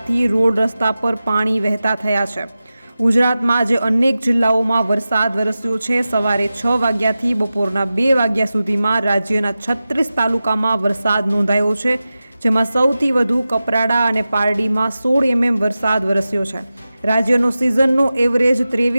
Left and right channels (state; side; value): inverted; both; correlation -0.94